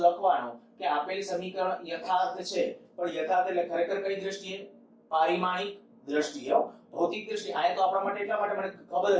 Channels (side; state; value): both; identical; correlation 1.00